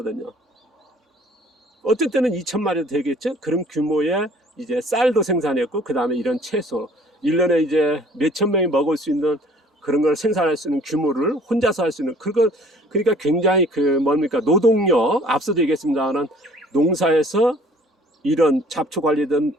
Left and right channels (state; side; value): normal; both; correlation 0.54